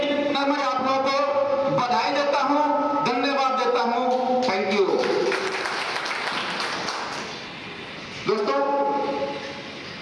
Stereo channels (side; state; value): both; identical; correlation 1.00